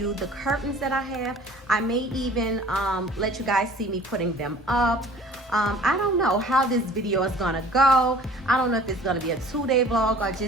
the curtains that I have. I may even let you guys see me putting them up. I don't know how this video is gonna go. I don't know if it's gonna be a 2-day vlog or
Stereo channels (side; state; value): both; normal; correlation 0.49